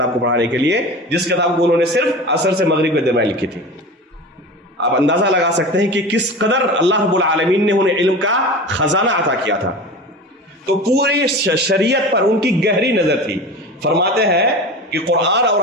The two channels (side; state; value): both; normal; correlation 0.32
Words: کو پڑھانے کے لیے، جس کتاب کو انہوں نے صرف عصر سے مغرب کے درمیان لکھی تھی. آپ اندازہ لگا سکتے ہیں کہ کس قدر اللہ رب العالمین نے انہیں علم کا خزانہ عطا کیا تھا. تو پوری شریعت پر ان کی گہری نظر تھی. فرماتے ہیں کہ قرآن اور